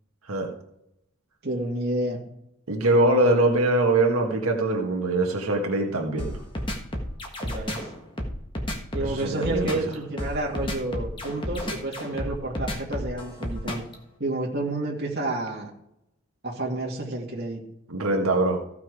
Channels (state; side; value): normal; both; correlation 0.20